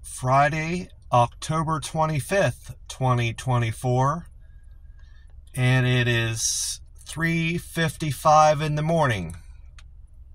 Friday, October 25th, 2024, and it is 3:55 in the morning,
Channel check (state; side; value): identical; both; correlation 1.00